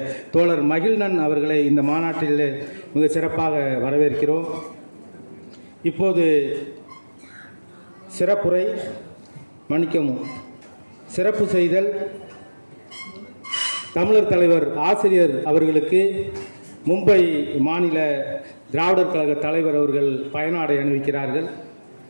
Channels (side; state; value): both; inverted; correlation -1.00